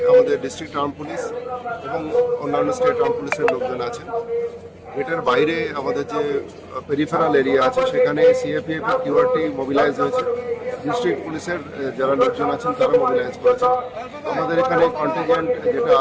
আমাদের ডিস্ট্রিক্ট আর্ম পুলিশ এবং অন্যান্য স্টেট আর্ম পুলিশের লোকজন আছেন। গেটের বাইরে আমাদের যে পেরিফেরাল এরিয়া আছে সেখানে সিএপিএফ এর কিউআরটি মোবিলাইজ হয়েছে। ডিস্ট্রিক্ট পুলিশের যারা লোকজন আছেন তারা মোবিলাইজ করেছে। আমাদের এখানে কন্টিনজেন্ট যেটা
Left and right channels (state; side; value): identical; both; correlation 1.00